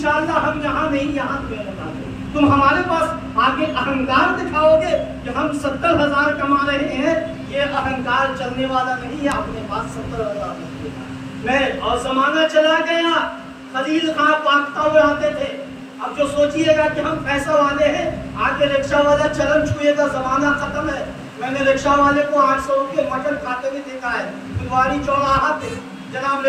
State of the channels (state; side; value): identical; both; correlation 1.00